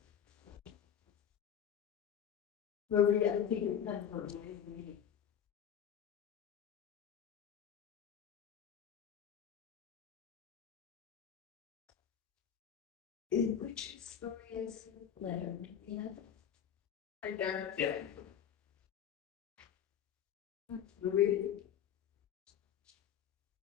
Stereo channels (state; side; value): quieter; right; 8.9 dB